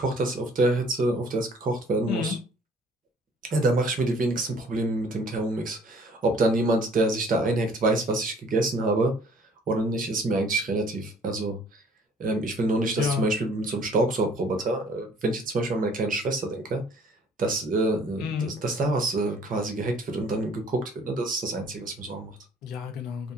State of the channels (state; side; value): normal; both; correlation 0.56